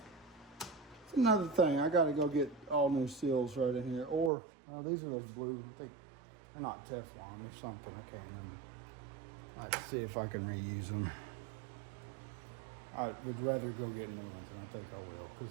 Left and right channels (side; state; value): left; drops out; at 4.3 s